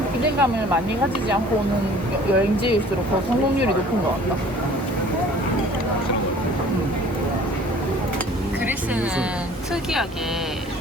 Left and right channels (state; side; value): normal; both; correlation 0.50